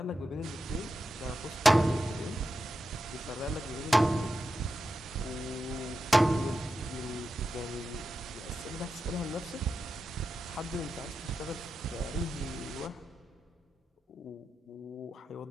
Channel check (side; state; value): both; normal; correlation 0.89